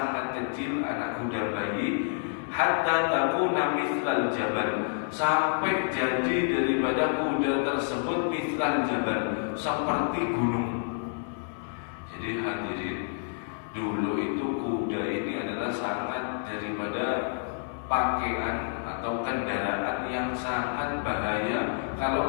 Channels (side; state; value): right; silent; 59 dB below the other